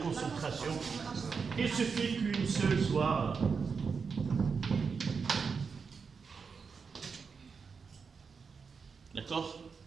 il suffit qu'une seule soit... D'accord?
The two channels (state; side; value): quieter; left; 5.5 dB